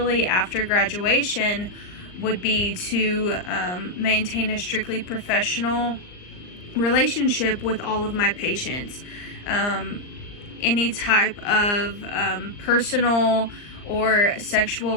after graduation, would be to maintain a strictly professional relationship with all of my patients. Any type of personal or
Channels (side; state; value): right; late; 39 ms